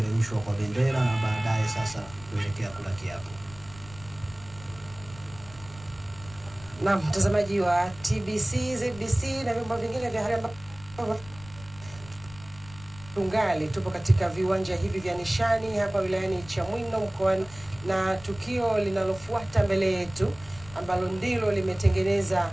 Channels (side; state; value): left; noise; rumble, 18 dB below the sound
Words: kwa bendera na baadaye sasa kuelekea kula kiapo. Na mtazamaji wa TBC, ZBC na vyombo vingine vya habari, tungali tupo katika viwanja hivi vya Nishani hapa wilayani Chamwino mkoani, na tukio linalofuata mbele yetu ambalo ndilo limetengeneza